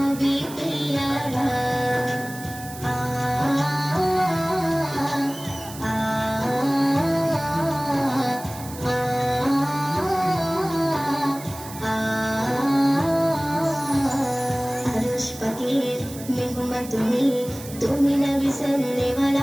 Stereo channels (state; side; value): noise; right; hiss, 15 dB below the sound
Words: পিয়ারা আ আ আরশ পাকের মেহমান তুমি তুমি নবী